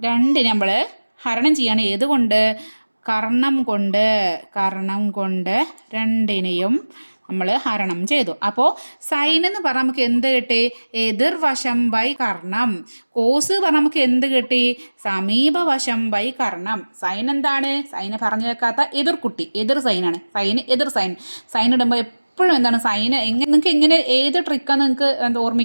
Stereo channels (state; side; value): inverted; both; correlation -1.00